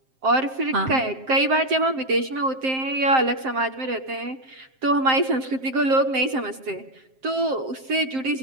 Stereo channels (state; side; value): late; left; 7.6 ms